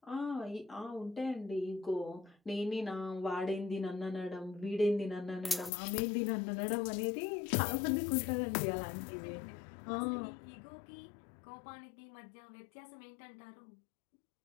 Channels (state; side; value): drops out; right; at 5.7 s